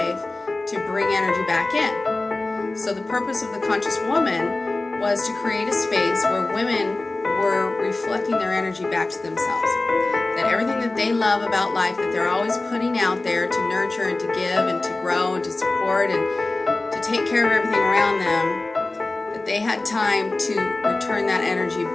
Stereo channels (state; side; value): quieter; right; 3.0 dB